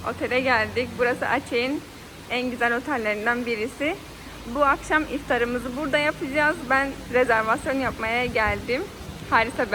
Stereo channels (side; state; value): both; identical; correlation 1.00